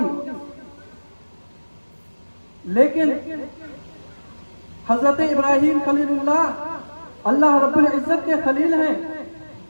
لیکن حضرت ابراہیم خلیل اللہ اللہ رب العزت کے خلیل ہیں،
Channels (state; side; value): inverted; both; correlation -1.00